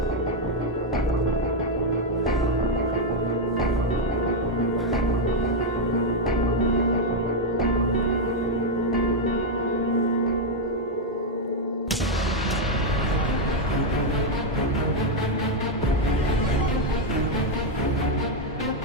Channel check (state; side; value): normal; both; correlation 0.01